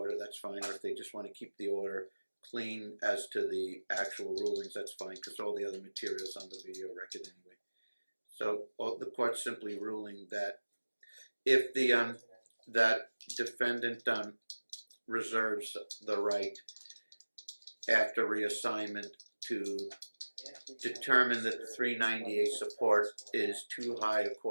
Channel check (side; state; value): both; inverted; correlation -1.00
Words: that's fine. Or if they just want to keep the order clean as to the actual rulings, that's fine, because all the other materials on the video record anyway. So the court's simply ruling that if the that defendant reserves the right after reassignment to determine that the 398 support is too high